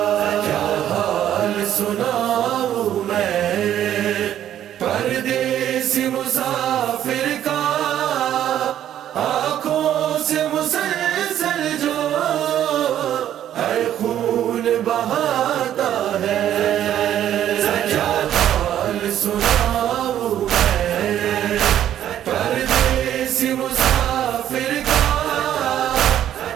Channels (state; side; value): quieter; left; 11.1 dB